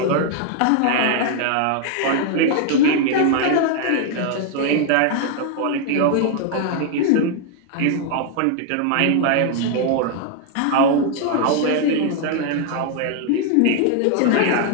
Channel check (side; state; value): both; different; correlation 0.00